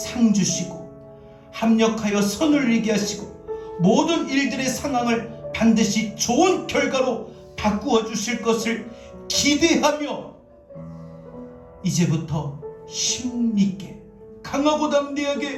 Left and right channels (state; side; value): identical; both; correlation 1.00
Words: 주시고 합력하여 선을 이루게 하시고 모든 일들의 상황을 반드시 좋은 결과로 바꾸어 주실 것을 기대하며 이제부터 힘있게, 강하고